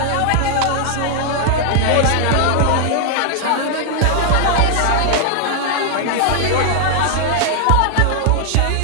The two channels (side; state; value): both; different; correlation 0.00